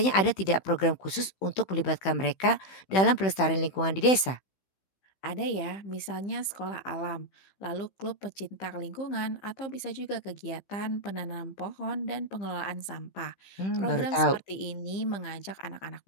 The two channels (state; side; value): late; right; 16 ms